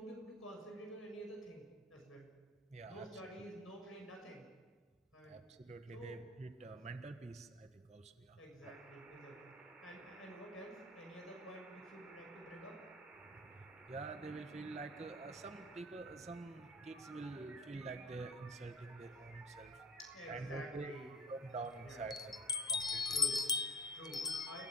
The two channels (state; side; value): normal; both; correlation 0.38